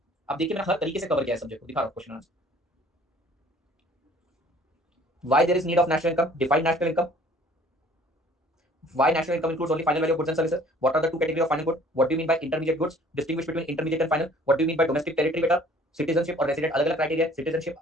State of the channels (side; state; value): both; normal; correlation 0.54